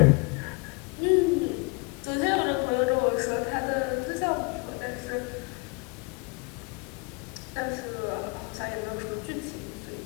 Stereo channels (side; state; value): right; quieter; 31.3 dB